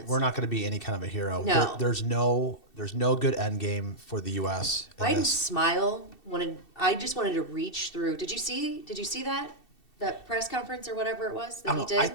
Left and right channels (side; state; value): right; late; 2.7 ms